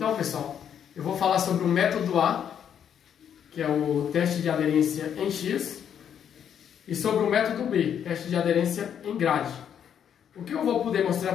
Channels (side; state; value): right; quieter; 8.7 dB